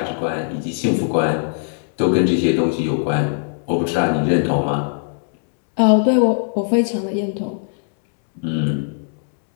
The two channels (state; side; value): silent; right; 66 dB below the other